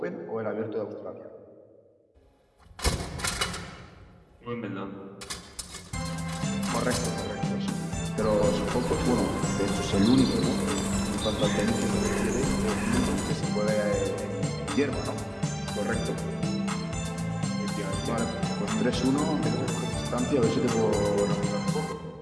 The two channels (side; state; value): both; identical; correlation 1.00